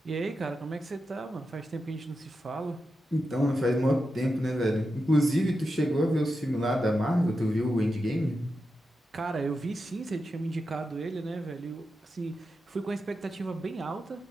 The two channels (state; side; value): normal; both; correlation 0.89